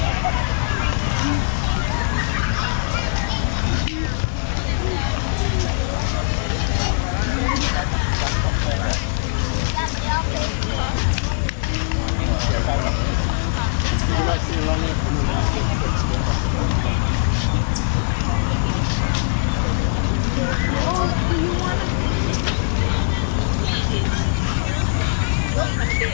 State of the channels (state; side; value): silent; right; digital silence